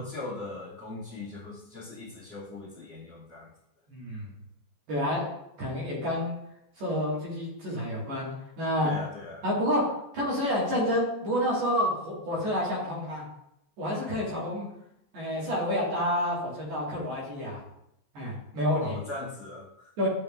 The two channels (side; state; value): left; late; 14 ms